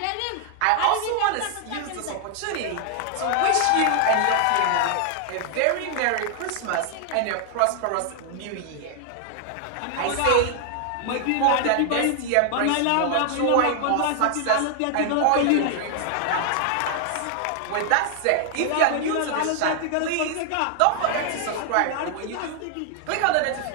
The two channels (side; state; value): both; different; correlation 0.00